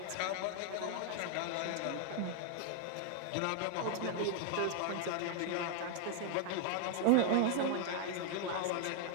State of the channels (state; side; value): different; both; correlation 0.00